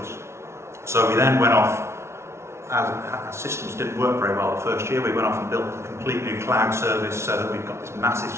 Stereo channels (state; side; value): late; left; 0.13 ms